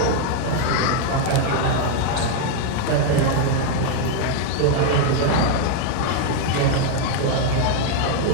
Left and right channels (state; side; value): different; both; correlation 0.00